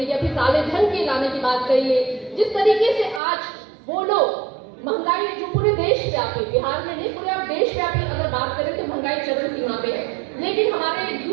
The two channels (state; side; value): drops out; left; at 3.2 s